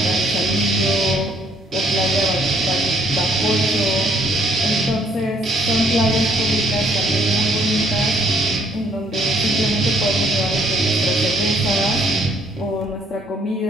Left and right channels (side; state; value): both; normal; correlation 0.66